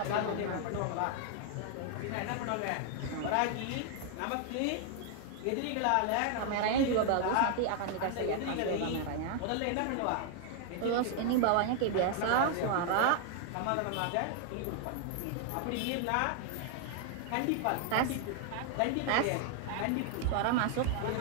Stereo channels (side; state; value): both; different; correlation 0.00